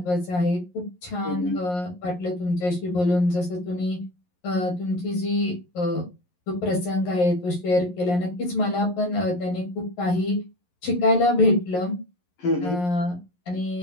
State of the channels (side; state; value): right; late; 11 ms